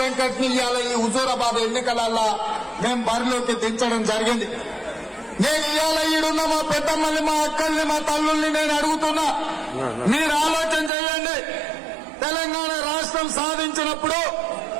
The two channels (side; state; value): left; drops out; at 10.9 s